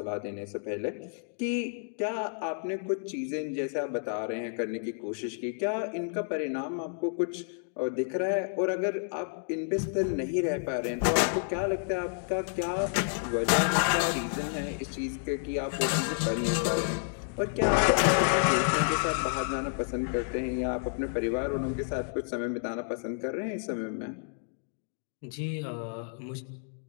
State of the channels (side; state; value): right; silent; digital silence